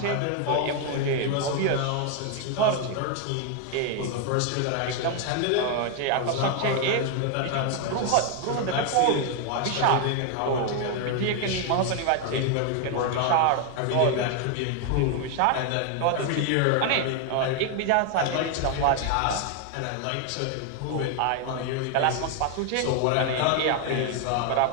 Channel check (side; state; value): both; different; correlation 0.01